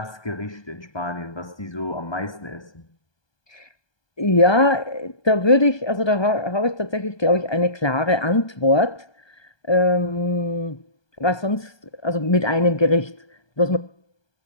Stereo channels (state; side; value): late; right; 1.2 ms